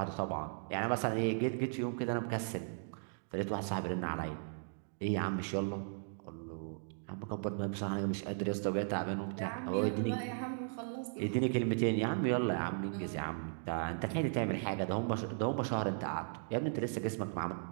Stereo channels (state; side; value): silent; left; digital silence